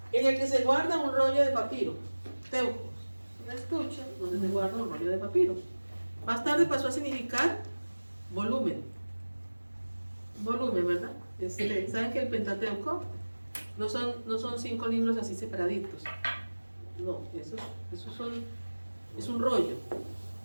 En el que se guarda un rollo de papiro. Teujos. Un estuche donde se guarda un rollo de papiro. Más tarde pasó a significar volumen. Volumen, ¿verdad? ¿Saben que el Pentateuco no son 5 libros así separaditos? No, es un rollo.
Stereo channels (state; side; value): inverted; both; correlation -1.00